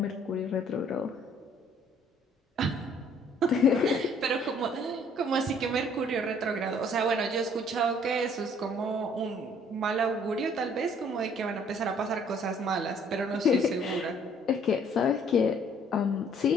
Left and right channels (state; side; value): normal; both; correlation 0.60